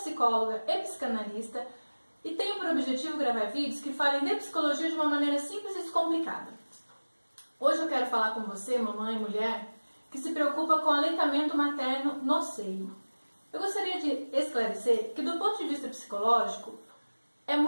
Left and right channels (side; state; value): both; inverted; correlation -1.00